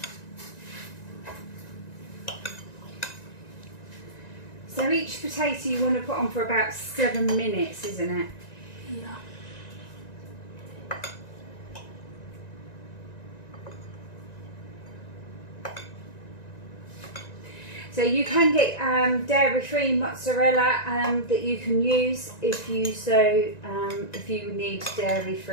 So each potato you want to put on for about 7 minutes, isn't it? Yeah. So you can get dairy-free mozzarella that you can use if you need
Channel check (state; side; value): late; right; 1.9 ms